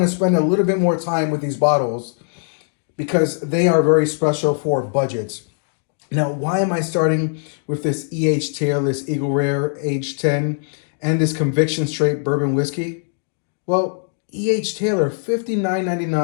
to spend a little bit more time with these bottles because they are very special for budgets. Now, why am I starting with this EH Tail, this Eagle Rare Age 10, and this Conviction Straight Bourbon Whiskey? Well, E.H. Taylor,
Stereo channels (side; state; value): right; silent; digital silence